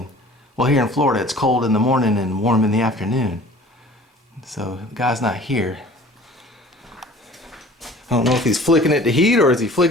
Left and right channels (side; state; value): both; normal; correlation 0.48